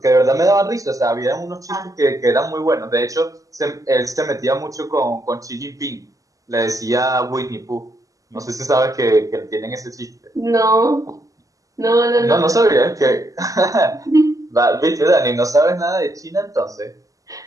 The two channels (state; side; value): late; left; 0.16 ms